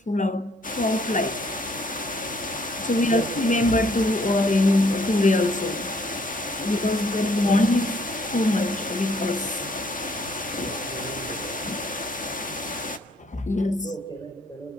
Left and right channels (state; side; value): normal; both; correlation 0.65